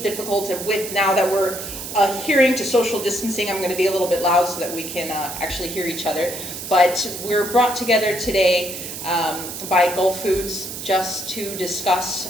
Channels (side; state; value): right; noise; hiss, 8 dB below the sound